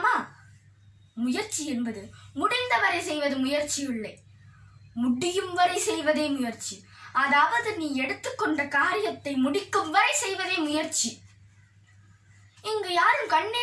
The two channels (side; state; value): both; identical; correlation 1.00